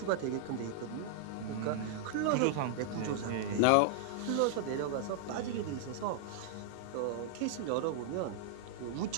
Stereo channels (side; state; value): both; different; correlation -0.01